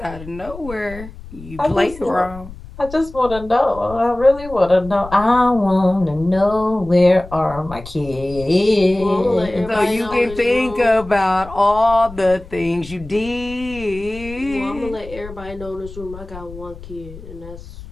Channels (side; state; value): left; noise; rumble, 15 dB below the sound